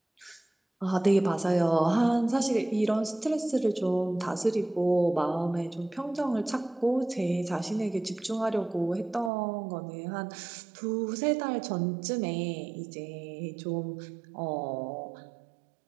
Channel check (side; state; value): left; drops out; at 9.3 s